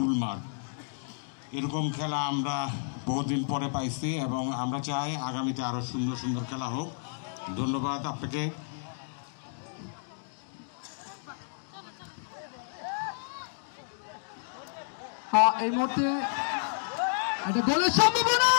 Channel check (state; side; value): silent; right; digital silence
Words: মাঠ, এরকম খেলা আমরা বহুদিন পরে পাইছি এবং আমরা চাই আগামীতে আরও সুন্দর সুন্দর খেলা হোক। ধন্যবাদ আপনাকে। এই মুহূর্তে একটা গোলের সম্ভাবনা,